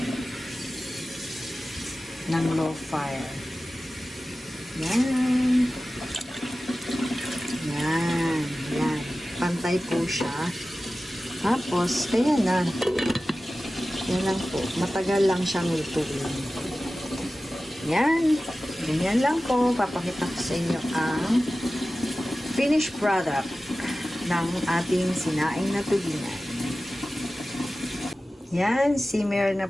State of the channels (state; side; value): normal; both; correlation 0.95